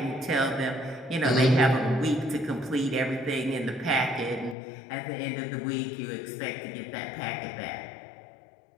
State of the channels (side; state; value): right; drops out; at 4.5 s